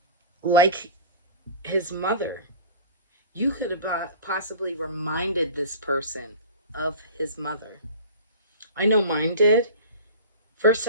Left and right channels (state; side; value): inverted; both; correlation -0.38